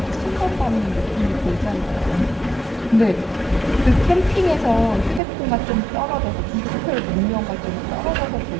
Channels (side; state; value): left; drops out; at 5.2 s